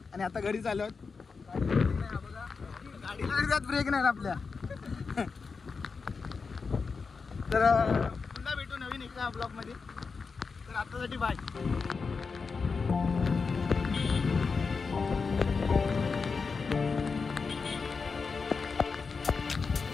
आणि आता घरी चाललो आहोत. गाडीला ब्रेक नाही आपल्या. तर पुन्हा भेटू नवीन एका ब्लॉगमध्ये. तर आतासाठी बाय.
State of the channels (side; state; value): right; quieter; 4.9 dB